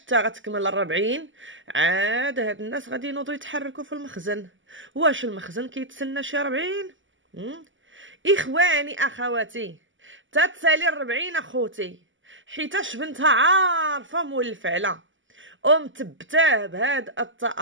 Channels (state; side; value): late; left; 0.55 ms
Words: غتكمل 40؟ عاد هاد الناس غادي ينوضوا يتحركوا في المخزن. واش المخزن كيتسنى شي 40؟ اخواني اخواتي، تتسالي 40 اخوتي، حيتاش بنتها عارفه مول الفعله ومتبتاه بهاد